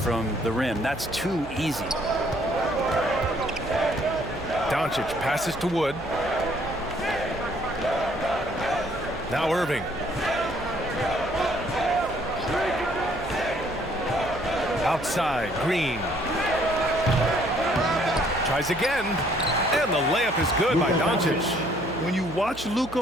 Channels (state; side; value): noise; right; hum, 16 dB below the sound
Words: the rim. That's too easy. Doncic passes to Wood. Now Irving. Outside, Green. Tries again. And the layup is good by Doncic. When you watch